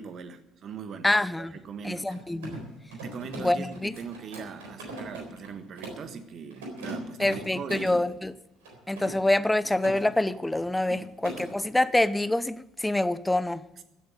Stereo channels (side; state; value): both; normal; correlation 0.96